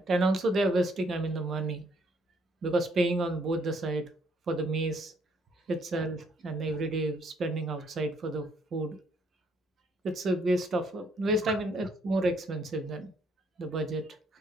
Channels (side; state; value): both; normal; correlation 0.68